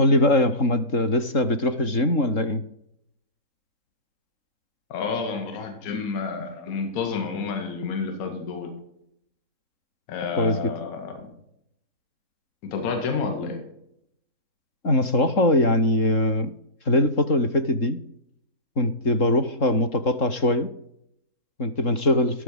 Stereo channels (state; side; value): late; right; 3.7 ms